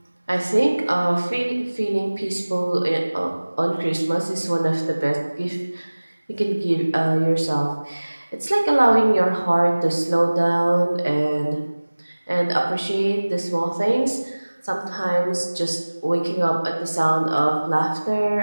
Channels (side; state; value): both; inverted; correlation -1.00